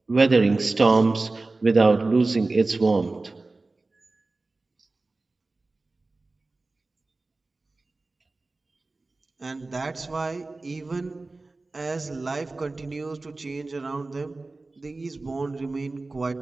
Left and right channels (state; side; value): quieter; left; 3.4 dB